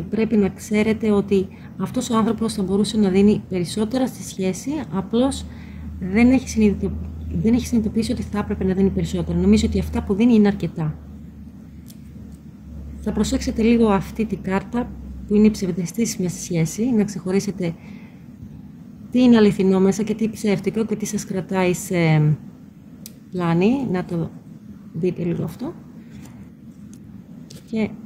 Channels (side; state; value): both; identical; correlation 1.00